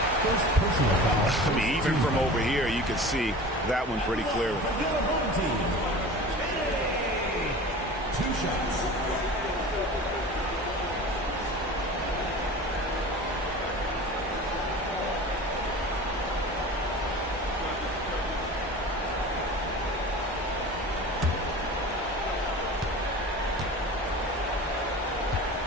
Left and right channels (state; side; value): normal; both; correlation 0.37